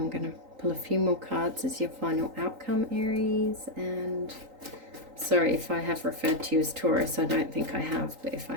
going to pull a few more cards as your final outcome, Aries. And sorry if I have referred to you as Taurus. I don't think I have, but if I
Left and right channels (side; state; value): left; late; 3.9 ms